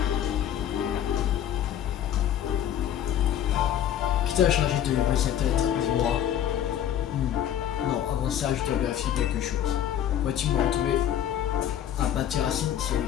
Qui t'a chargé de livrer cette lettre, dis-moi. Non, avant ça, je dois vérifier quelque chose. Vois-tu me retrouver à Bâti-Racine,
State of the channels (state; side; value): quieter; right; 10.4 dB